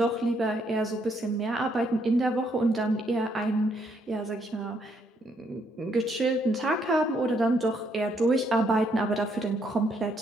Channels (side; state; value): both; normal; correlation 0.72